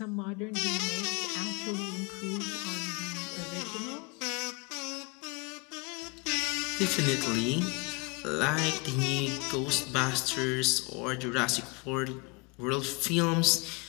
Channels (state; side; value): quieter; right; 29.8 dB